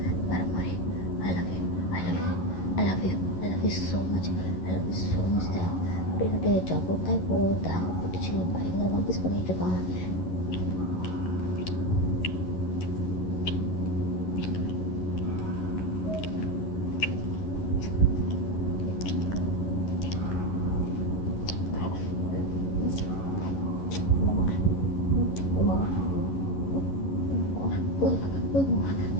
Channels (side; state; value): right; late; 11 ms